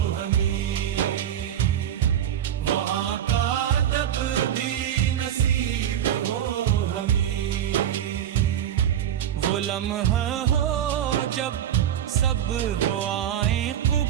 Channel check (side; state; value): left; quieter; 10.4 dB